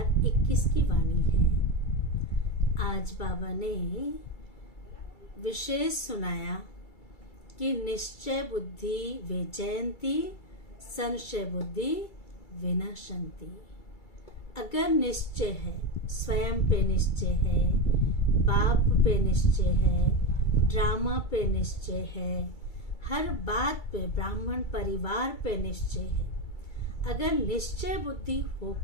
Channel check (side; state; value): right; late; 2.3 ms